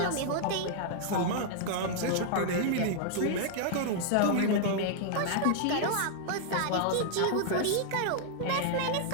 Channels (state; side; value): different; both; correlation -0.01